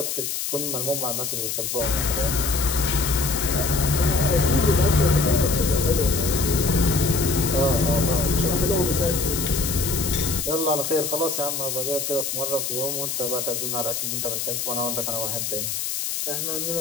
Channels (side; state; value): left; noise; hiss, 3 dB below the sound